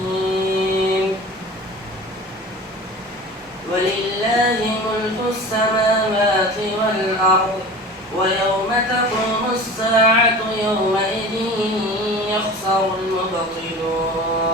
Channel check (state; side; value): normal; both; correlation 0.37